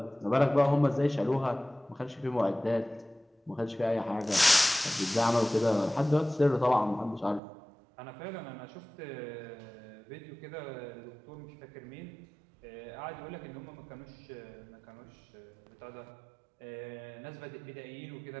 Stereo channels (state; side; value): drops out; left; at 7.4 s